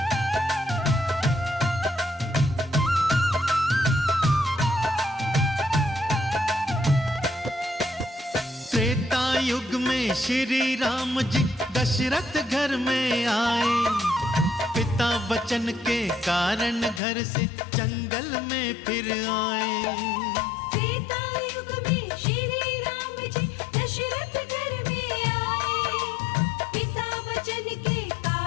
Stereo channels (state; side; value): drops out; right; at 17.0 s